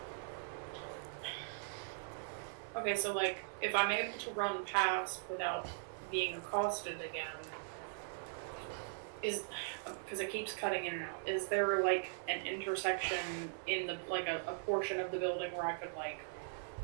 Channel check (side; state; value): left; silent; 51 dB below the other